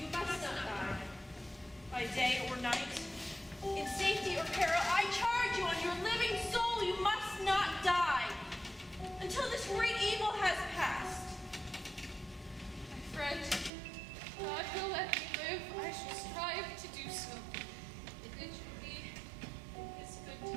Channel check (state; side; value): drops out; left; at 13.7 s